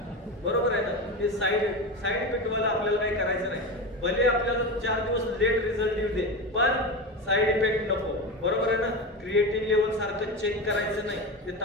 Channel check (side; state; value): both; normal; correlation 0.22